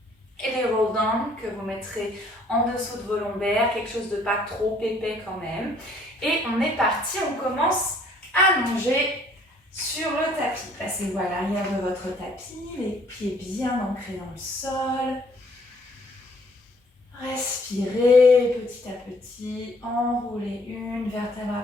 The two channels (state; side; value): normal; both; correlation 0.61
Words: et les roll-down que vous mettrez en dessous de vos lombaires, quelque chose de pas trop épais quand même. Et on est parti, on commence allongé sur le tapis. Passez-vous à l'arrière de votre tapis, les pieds bien ancrés dans le sol. Respirez petit à petit, enroulez une vertèbre